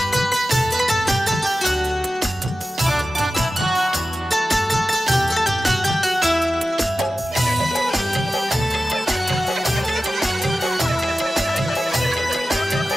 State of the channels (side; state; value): both; normal; correlation 0.94